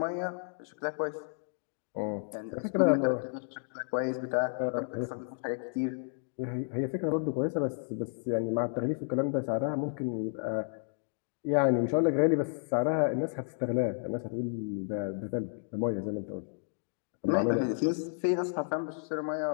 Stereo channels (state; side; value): silent; right; digital silence